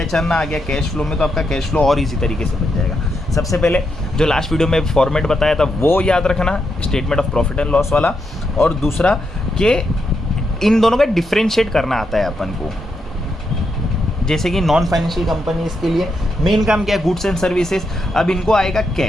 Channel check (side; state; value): both; normal; correlation 0.82